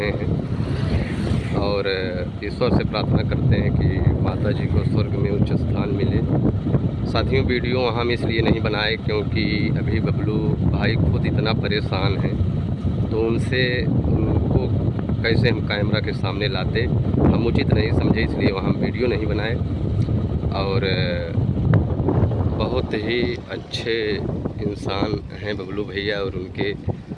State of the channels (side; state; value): both; identical; correlation 1.00